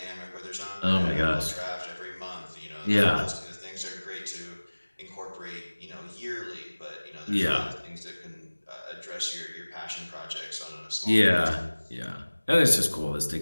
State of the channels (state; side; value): inverted; both; correlation -1.00